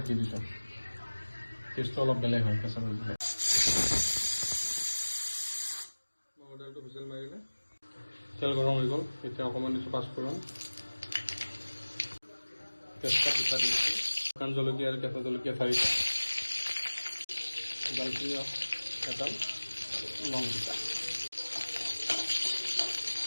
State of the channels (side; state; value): both; inverted; correlation -1.00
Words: দি দিছোঁ, টেষ্টটো অলপ বেলেগ হয় কেঁচা পেঁয়াজ দিলে। মগৰ দাইলটো হুইচেল মাৰিলে, তেল গৰম হৈ গ'ল, এতিয়া অকণমান দিছোঁ পাঁচফোৰণ, তেজপাত দুটা দি দিছোঁ, শুকান জলকীয়া আৰু কেঁচা জলকীয়া 4টা, দালচিনি এডাল, লং দুটা।